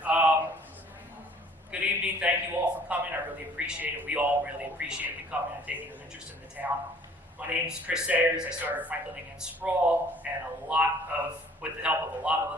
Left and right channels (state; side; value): normal; both; correlation 0.55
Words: Good evening. Thank you all for coming. I really appreciate it. We all really appreciate you coming and taking an interest in the town. My name is Chris Sayers. I started Franklin against Sprawl, and with the help of a lot of